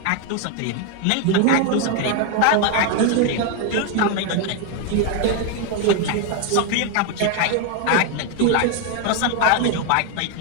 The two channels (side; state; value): both; different; correlation 0.01